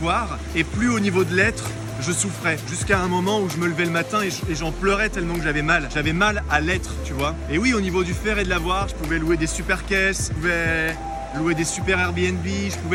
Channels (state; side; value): identical; both; correlation 1.00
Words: et plus au niveau de l'être, je souffrais. Jusqu'à un moment où je me levais le matin et j'en pleurais tellement que j'avais mal. J'avais mal à l'être, tu vois. Et oui, au niveau du faire et de l'avoir, je pouvais louer des super caisses, je pouvais louer des super Airbnb, je